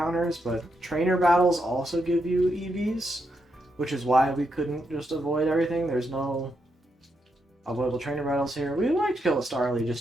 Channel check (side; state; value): both; normal; correlation 0.82